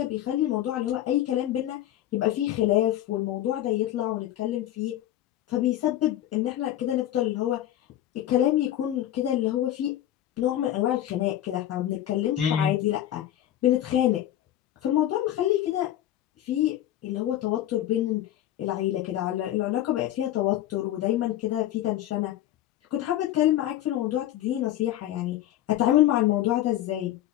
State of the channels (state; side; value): quieter; right; 12.8 dB